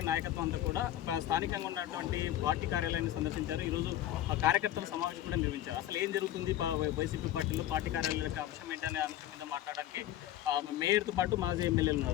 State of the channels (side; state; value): right; quieter; 12.9 dB